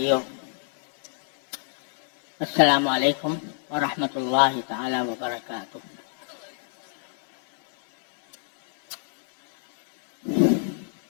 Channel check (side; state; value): right; silent; 62 dB below the other